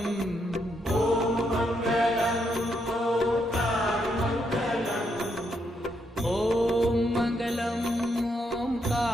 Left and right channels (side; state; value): both; normal; correlation 0.78